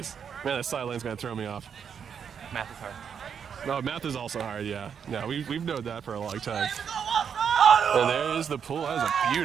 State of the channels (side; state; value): left; quieter; 7.4 dB